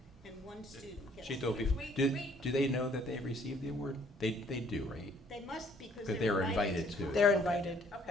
and one student gets. Sheila, do they know that they received the award? They do, right? They must, because But they were invited to it. They're invited,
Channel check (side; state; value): both; normal; correlation 0.61